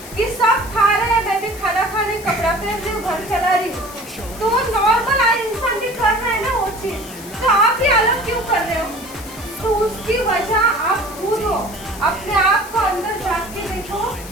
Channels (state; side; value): noise; left; hiss, 16 dB below the sound